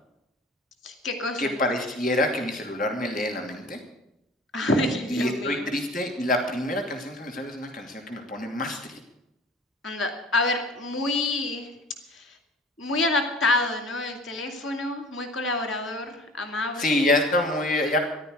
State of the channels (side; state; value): both; normal; correlation 0.45